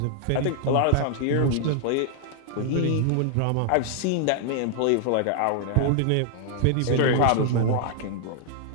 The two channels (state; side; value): different; both; correlation 0.00